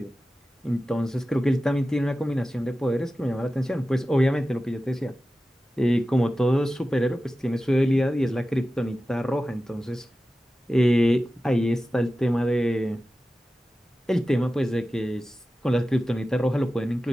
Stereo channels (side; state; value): both; normal; correlation 0.94